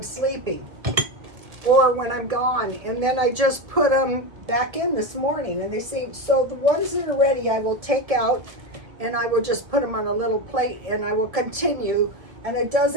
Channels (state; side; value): late; left; 1.4 ms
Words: sleeping or when I'm gone. And then I just put them back in this morning, and they seem, so the ones that are ready I will take out and I will just put them on a little plate and I will continue, and it